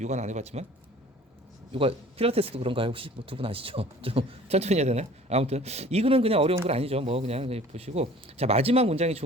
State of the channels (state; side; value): normal; both; correlation 0.48